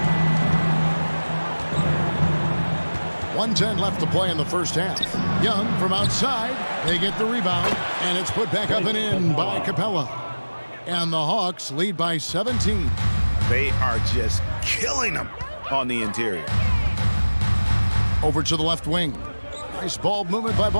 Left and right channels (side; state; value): both; inverted; correlation -1.00